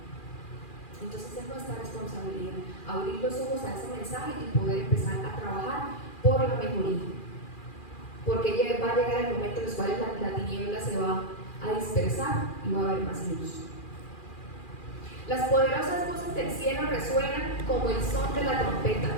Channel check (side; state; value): right; late; 2.4 ms